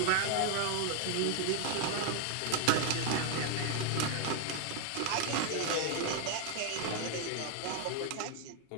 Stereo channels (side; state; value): both; different; correlation 0.00